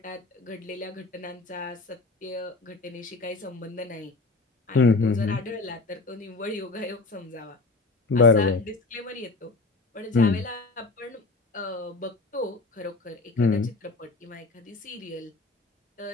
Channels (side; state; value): right; quieter; 3.6 dB